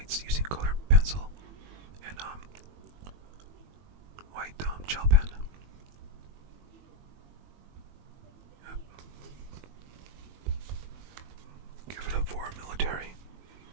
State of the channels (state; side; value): late; left; 21 ms